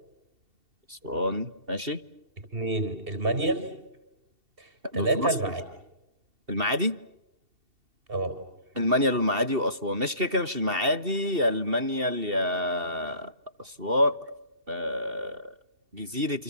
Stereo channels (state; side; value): late; left; 2.7 ms